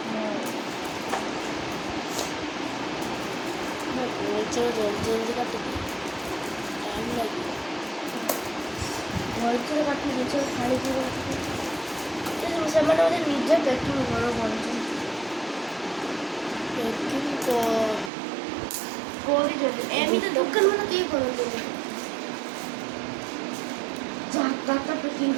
চলো জলদি জলদি কাটে টাইম লাগবে ଭଲସେ କାଟି ଜିନିଷ ଛାଡ଼ିକି ସେମାନେ ବୋଧେ ନିଜେ ପ୍ୟାକିଂ ଘର କରୁଛନ୍ତି ପ୍ୟାକିଂ କରୁଛନ୍ତି ଏମିତି ଦୋକାନ ମାନେ କେହି କରନ୍ତିନି ଯାହା ପ୍ୟାକିଂ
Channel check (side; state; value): left; drops out; at 18.1 s